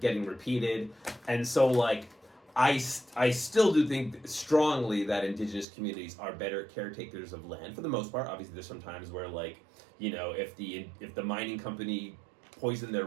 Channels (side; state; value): left; drops out; at 5.7 s